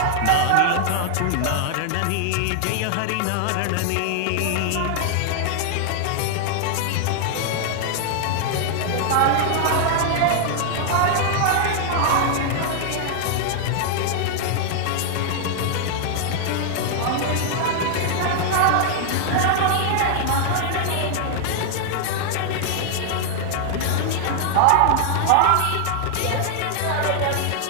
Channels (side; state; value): both; different; correlation 0.00